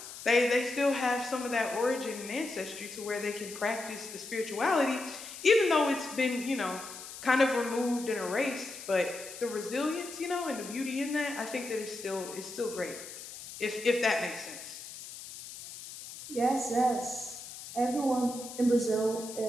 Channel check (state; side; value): noise; left; hiss, 12 dB below the sound